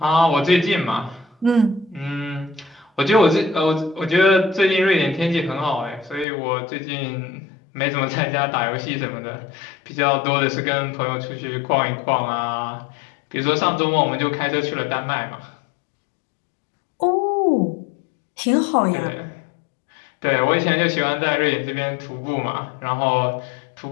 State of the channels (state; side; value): drops out; right; at 6.2 s